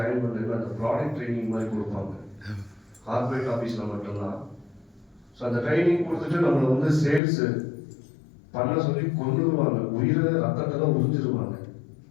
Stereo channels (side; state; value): right; drops out; at 7.2 s